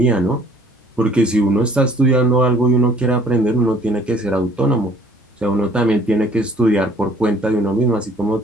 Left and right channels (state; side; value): normal; both; correlation 0.56